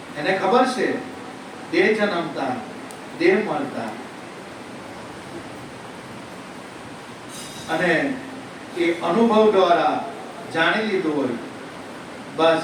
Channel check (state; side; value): identical; both; correlation 1.00